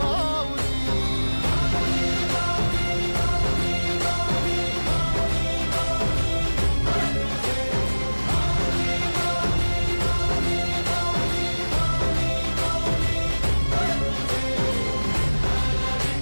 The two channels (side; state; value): both; inverted; correlation -1.00